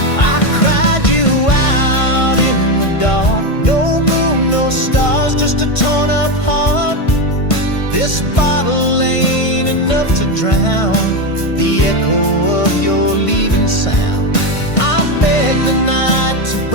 I cried you out in the dark. No moon, no stars, just a torn up heart. This bottle ain't enough to drown the echo of your leaving sound. The night to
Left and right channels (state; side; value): late; right; 1.5 ms